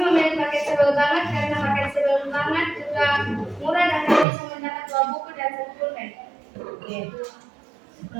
memilih paket sebel banget karena paket sebel banget juga murah dan kami bisa mendapat 2 buku dan 1 pulpen. Oke.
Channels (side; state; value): left; drops out; at 4.2 s